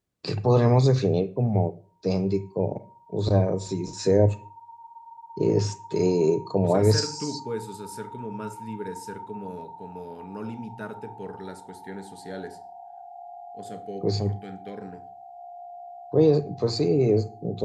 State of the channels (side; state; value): both; identical; correlation 1.00